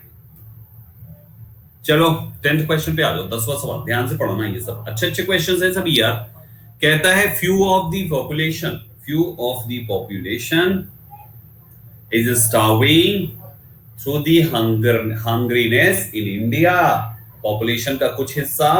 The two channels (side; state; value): both; identical; correlation 1.00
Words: चलो 10th क्वेश्चन पे आ जाओ, 10वां सवाल, ध्यान से पढ़ना, ये सब अच्छे अच्छे क्वेश्चंस हैं सभी यार। कहता है few of the population is starving through the hungriness in India. Population का कुछ हिस्सा